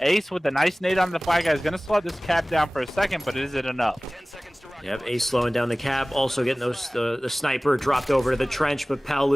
Ace with the nice nade on the flag guy is going to slow this cap down for a second, but is it enough? Yep, Ace slowing down the cap, also getting the sniper dropped over to the trench, but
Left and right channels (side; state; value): both; normal; correlation 0.98